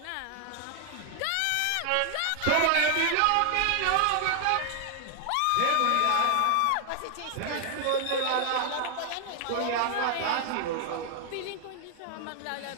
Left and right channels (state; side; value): different; both; correlation 0.00